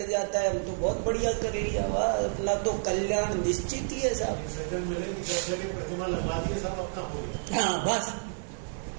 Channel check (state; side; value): silent; left; 56 dB below the other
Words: जाता है, हम तो बहुत बढ़िया कर लिया, वाह अपना तो कल्याण निश्चित ही है साहब, प्रतिमा लगवा दिए साहब, अपना हो गया। हाँ बस,